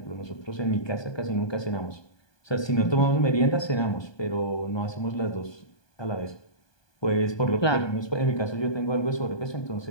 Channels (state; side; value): late; right; 1.2 ms